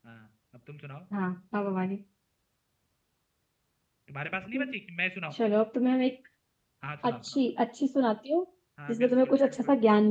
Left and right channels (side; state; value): both; identical; correlation 1.00